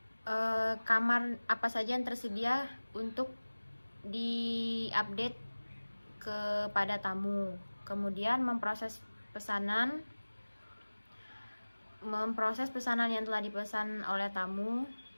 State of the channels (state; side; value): inverted; both; correlation -1.00